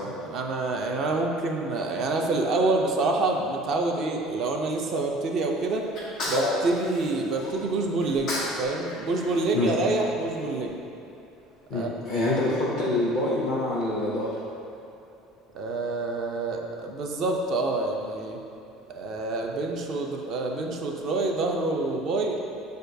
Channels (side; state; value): both; normal; correlation 0.47